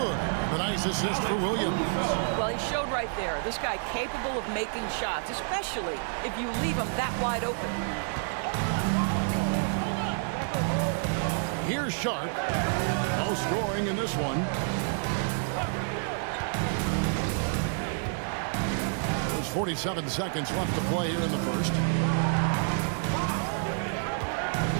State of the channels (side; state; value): left; silent; 59 dB below the other